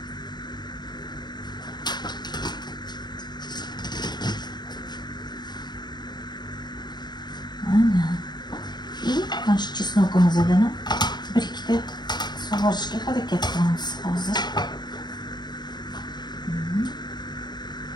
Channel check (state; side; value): late; right; 0.21 ms